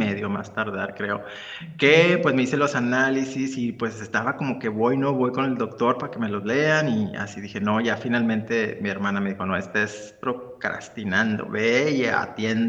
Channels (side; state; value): both; identical; correlation 1.00